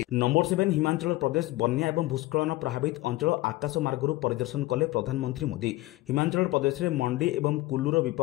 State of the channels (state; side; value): quieter; right; 18.8 dB